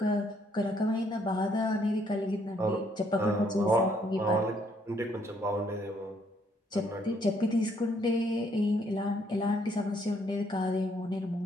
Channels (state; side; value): normal; both; correlation 0.69